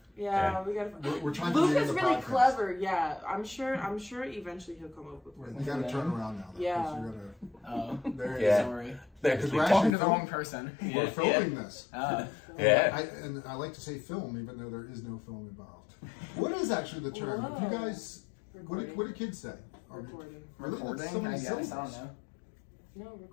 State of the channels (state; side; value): drops out; right; at 10.0 s